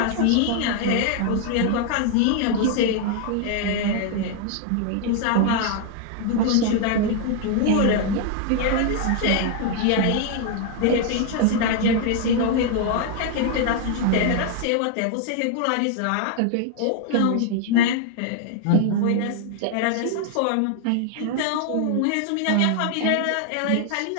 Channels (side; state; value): both; different; correlation 0.00